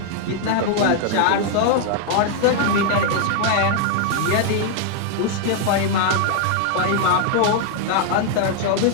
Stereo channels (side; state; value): both; different; correlation 0.00